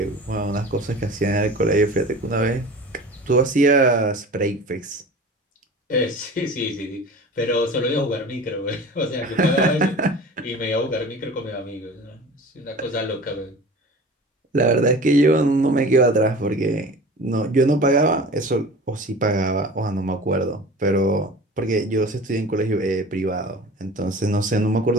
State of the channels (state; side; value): normal; both; correlation 0.38